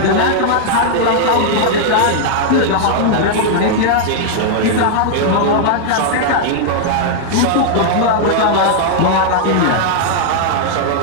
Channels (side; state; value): both; different; correlation -0.01